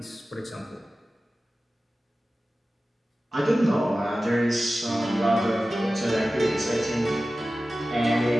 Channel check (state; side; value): normal; both; correlation 0.95